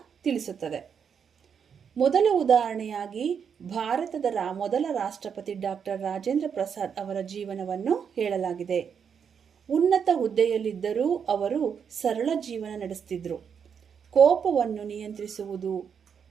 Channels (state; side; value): quieter; left; 7.1 dB